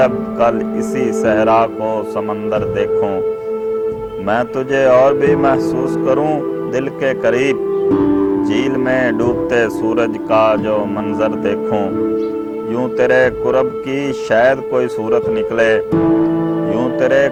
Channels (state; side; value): identical; both; correlation 1.00